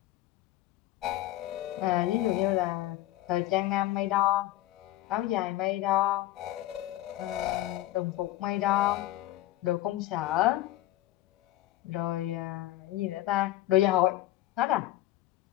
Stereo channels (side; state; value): right; quieter; 15.2 dB